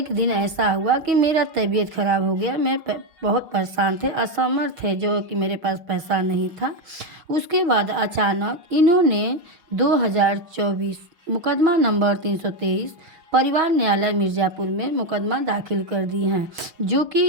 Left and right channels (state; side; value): late; left; 6.1 ms